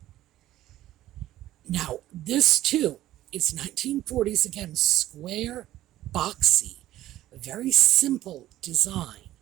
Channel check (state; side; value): quieter; left; 14.3 dB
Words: Now, this too is 1940s, again, square, boxy, a very simple design.